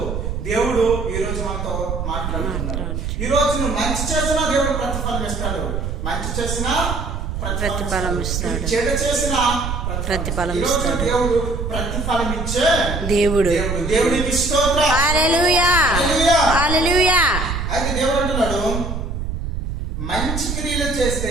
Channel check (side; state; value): right; noise; rumble, 3 dB below the sound